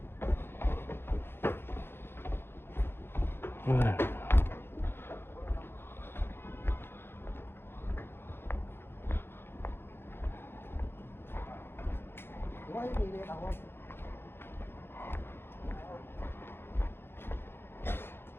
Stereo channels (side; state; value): right; late; 0.11 ms